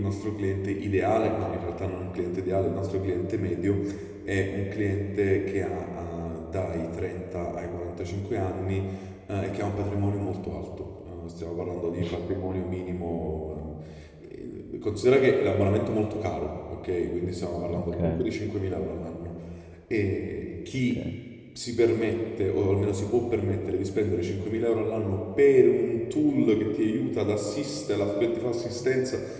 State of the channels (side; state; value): both; identical; correlation 1.00